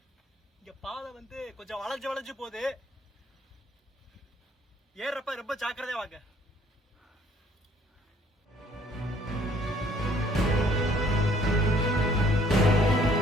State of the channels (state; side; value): normal; both; correlation 0.62